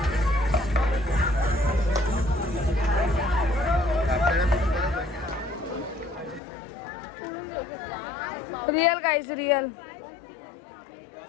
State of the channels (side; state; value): right; drops out; at 6.4 s